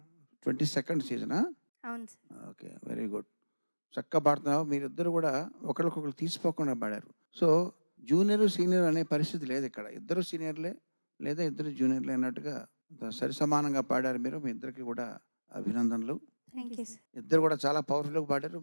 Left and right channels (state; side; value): inverted; both; correlation -1.00